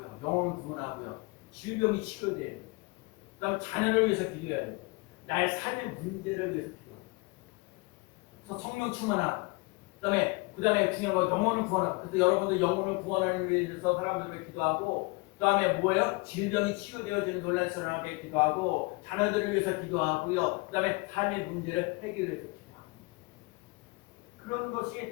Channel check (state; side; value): quieter; right; 27.8 dB